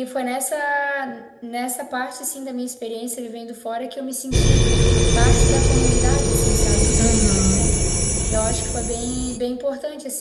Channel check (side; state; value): both; identical; correlation 1.00